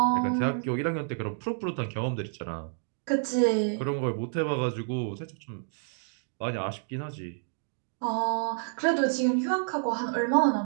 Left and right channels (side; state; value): left; silent; digital silence